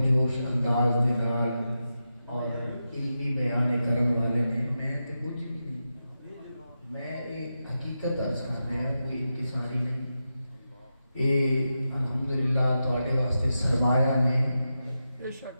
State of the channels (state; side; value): inverted; both; correlation -0.89